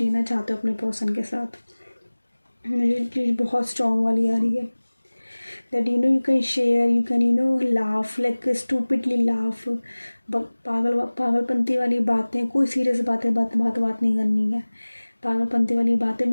चाहते हो अपने पर्सन के साथ। मुझे चीज़ बहुत स्ट्रॉन्ग वाली आ रही है, that you can share, you can laugh, like stupidly laugh, पागलपंती वाली बातें, कोई सीरियस बात नहीं करनी है। पागलपंती वाली बातें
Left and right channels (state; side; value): inverted; both; correlation -1.00